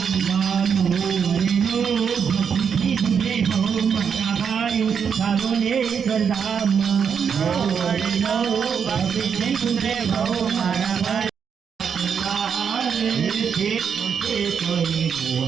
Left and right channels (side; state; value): left; quieter; 7.0 dB